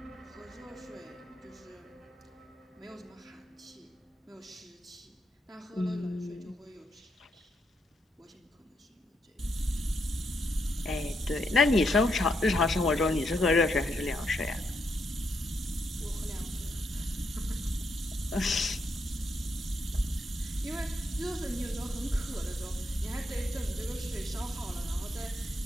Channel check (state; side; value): normal; both; correlation 0.79